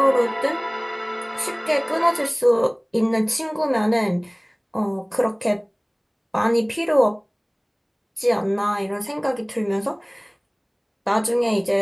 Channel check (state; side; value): identical; both; correlation 1.00